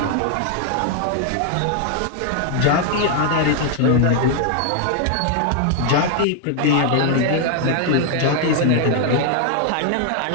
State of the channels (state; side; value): different; both; correlation 0.00